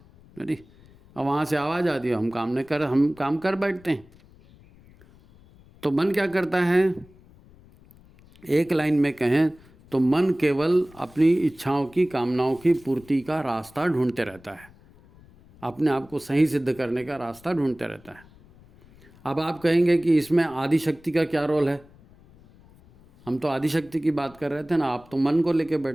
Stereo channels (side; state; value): left; noise; rumble, 26 dB below the sound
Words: नहीं। और वहाँ से आवाज़ आती है, हम काम कर बैठते हैं। तो मन क्या करता है? एक लाइन में कहें तो मन केवल अपनी इच्छाओं की, कामनाओं की पूर्ति का रास्ता ढूंढते रहता है, अपने आप को सही सिद्ध करने का रास्ता ढूंढते रहता है। अब आप कहेंगे कि इसमें आदि शक्ति का क्या रोल है? हम तो आदि शक्ति की बात कर रहे थे ना, आप तो मन को लेके बैठ